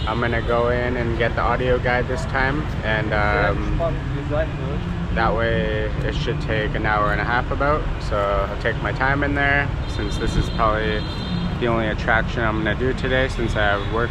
I'm gonna go in and get the audio guide this time, and that way it should take an hour and a half about. So I'll take my time in there, since this is probably the only attraction I'm gonna do today, since I have work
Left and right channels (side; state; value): both; identical; correlation 1.00